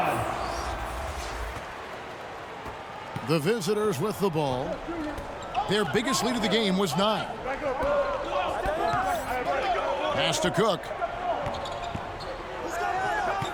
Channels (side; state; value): both; identical; correlation 1.00